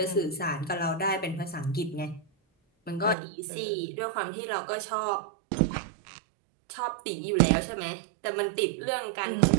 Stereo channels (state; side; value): drops out; left; at 3.2 s